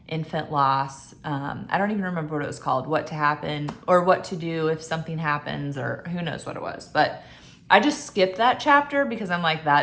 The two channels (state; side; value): identical; both; correlation 1.00